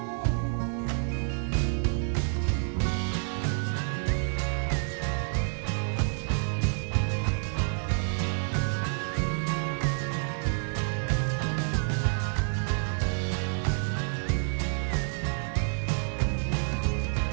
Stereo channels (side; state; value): left; silent; 59 dB below the other